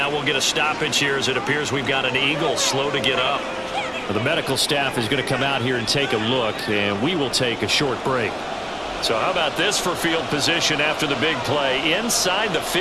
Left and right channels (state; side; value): identical; both; correlation 1.00